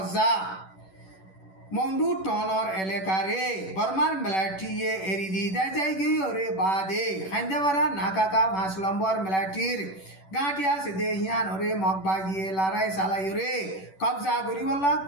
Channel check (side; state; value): right; late; 11 ms